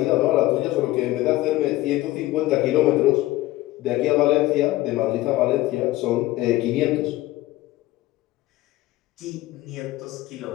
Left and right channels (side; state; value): right; quieter; 17.4 dB